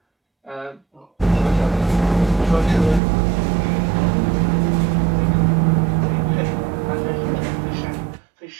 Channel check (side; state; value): left; drops out; at 3.0 s